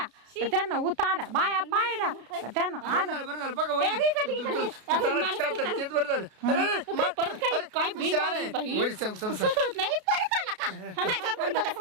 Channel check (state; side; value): late; left; 33 ms